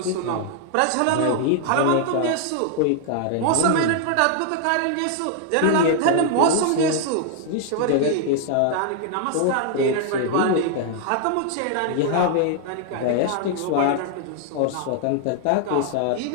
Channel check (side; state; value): both; different; correlation 0.00